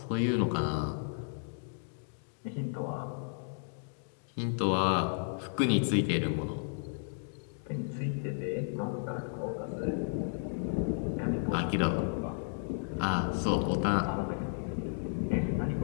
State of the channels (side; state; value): right; silent; digital silence